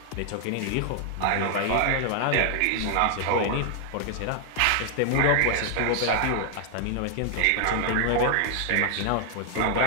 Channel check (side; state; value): both; different; correlation 0.00